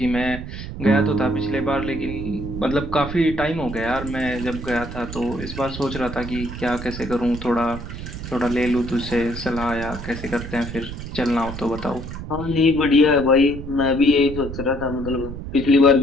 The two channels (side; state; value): right; noise; rumble, 9 dB below the sound